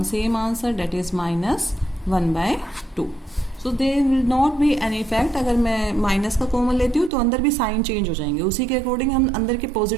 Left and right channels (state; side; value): drops out; left; at 7.1 s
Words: same answer, that is -1/2। So there will not be any effect. अगर मैं माइनस का कॉमन लेती हूँ तो अंदर भी साइन चेंज हो जाएंगे, उसी के अकॉर्डिंग हम अंदर के